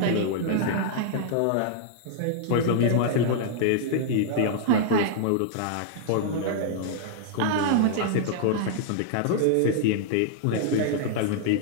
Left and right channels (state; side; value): different; both; correlation -0.01